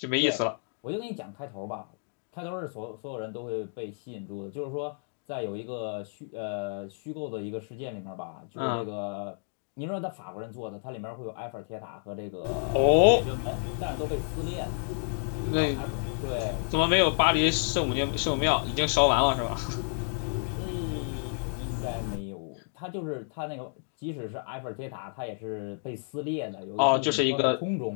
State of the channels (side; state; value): right; silent; digital silence